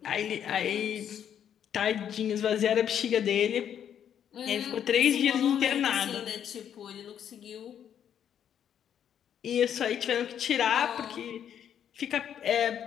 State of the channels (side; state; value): right; quieter; 9.2 dB